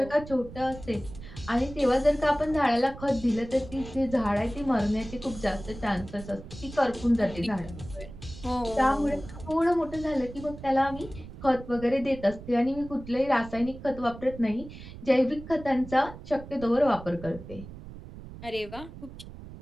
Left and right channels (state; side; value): noise; right; rumble, 14 dB below the sound